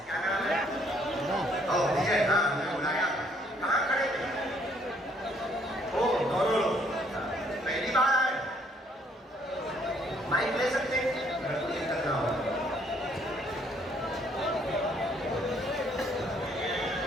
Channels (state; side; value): normal; both; correlation 0.65